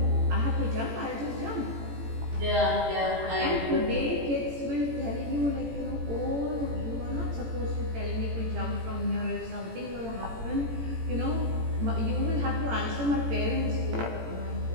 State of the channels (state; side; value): late; left; 18 ms